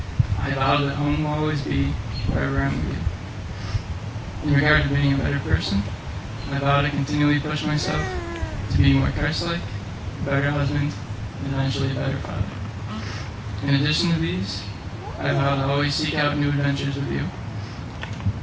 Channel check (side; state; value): both; identical; correlation 1.00